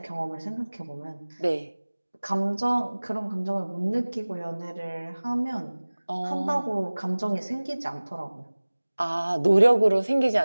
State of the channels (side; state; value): both; inverted; correlation -1.00